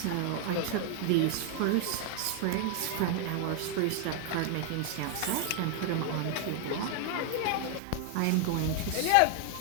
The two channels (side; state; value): both; different; correlation 0.00